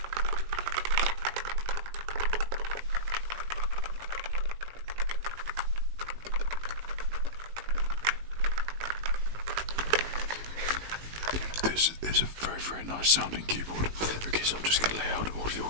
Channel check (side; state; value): left; late; 18 ms